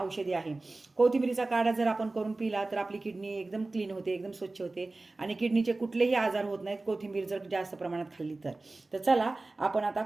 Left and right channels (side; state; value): left; quieter; 3.2 dB